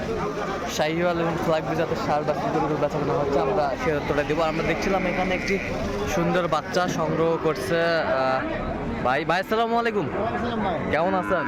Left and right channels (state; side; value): identical; both; correlation 1.00